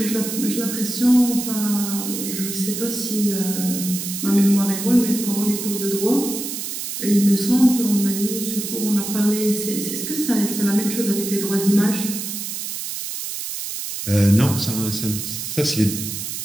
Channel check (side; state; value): right; noise; hiss, 6 dB below the sound